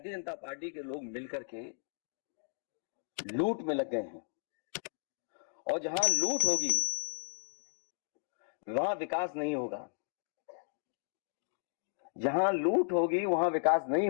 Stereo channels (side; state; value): right; silent; digital silence